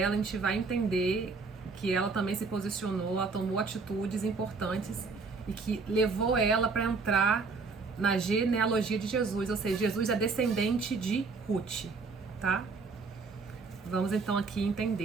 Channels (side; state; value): left; quieter; 4.4 dB